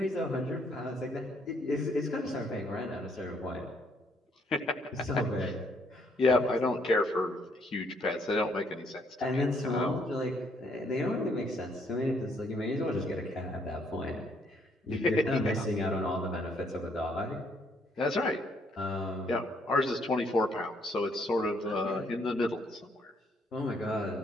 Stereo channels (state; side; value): normal; both; correlation 0.69